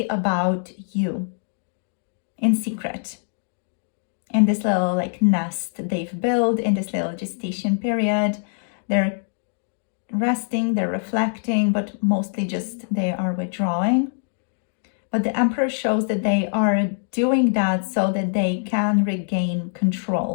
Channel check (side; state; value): right; silent; digital silence